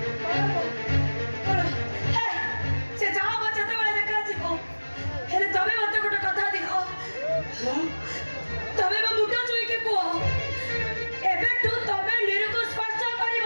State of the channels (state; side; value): inverted; both; correlation -1.00